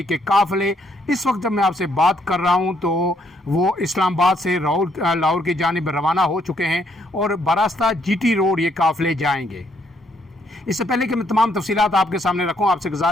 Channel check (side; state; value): both; normal; correlation 0.71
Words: के काफ़िले इस वक्त जब मैं आपसे बात कर रहा हूं तो वो इस्लामाबाद से लाहौर की जानिब रवाना हो चुके हैं और बरास्ता जीटी रोड ये काफ़िले जाएंगे। इससे पहले कि मैं तमाम तफसीलात आपके सामने रखूं, आपसे